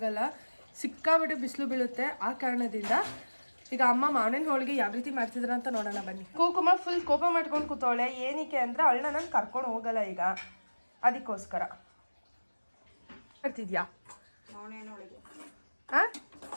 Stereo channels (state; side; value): inverted; both; correlation -1.00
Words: ಸಿಕ್ಕಾಬಿಟ್ಟೆ ಬಿಸಿಲು ಬೀಳುತ್ತೆ. ಆ ಕಾರಣದಿಂದ ಈಗ ಅಮ್ಮ ಮಾವಿನ ಹೋಳಿಗೆ ಯಾವ ರೀತಿ ಮಾಡ್ತಿದ್ರ ಅಂತ ನೋಡೋಣ ಬನ್ನಿ. ಕುಕುಮ ಫುಲ್ ಕೋಪ ಮಾಡ್ಕೊಂಡು ಕೂತವಳೆ. ಏನಕ್ಕೆ ಅಂದರೆ ಅವಳನ್ನ ನಾನು ಕರ್ಕೊಂಡು ಹೋಗಲ್ಲ ಈಗ, ಅದಕ್ಕೋಸ್ಕರ. ಮಾಡ್ತಿದ್ಯಾ ಮಾವಿನ ಹೋಳಿಗೆ? ಹಾಂ,